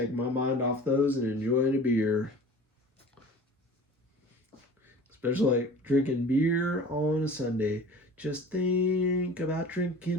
my mind off those and enjoying a beer. Especially like drinking beer on a Sunday. Just think about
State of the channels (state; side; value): normal; both; correlation 0.42